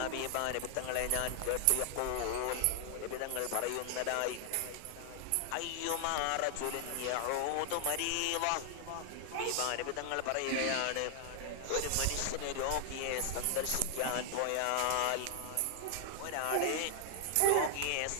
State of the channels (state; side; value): different; both; correlation 0.00